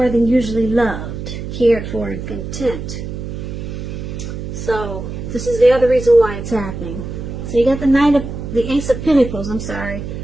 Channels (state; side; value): noise; right; hum, 7 dB below the sound